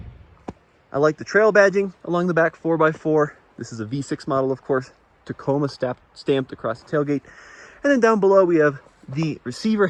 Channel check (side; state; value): both; identical; correlation 1.00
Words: I like the Trail badging along the back 4x4. This is a V6 model, of course. Tacoma stamped across the tailgate. And then down below we have the receiver